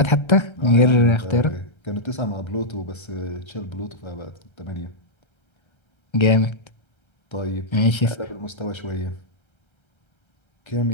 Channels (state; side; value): late; right; 1.3 ms